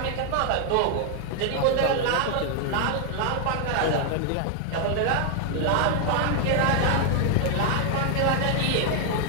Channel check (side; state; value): both; different; correlation 0.00